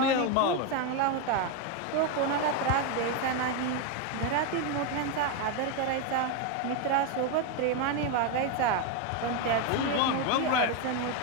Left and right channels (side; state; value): both; different; correlation 0.02